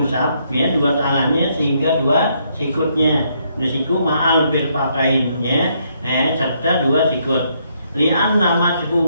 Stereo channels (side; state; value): both; inverted; correlation -0.73